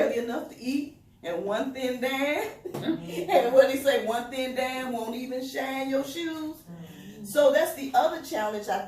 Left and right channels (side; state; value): both; identical; correlation 1.00